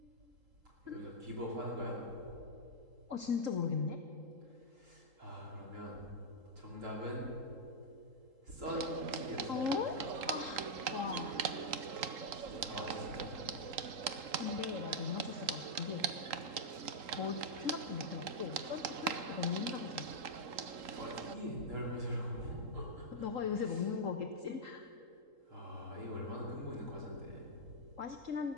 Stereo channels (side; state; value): left; late; 3.8 ms